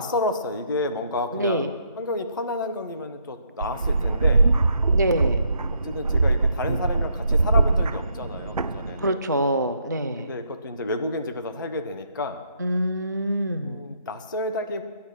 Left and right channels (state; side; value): inverted; both; correlation -0.72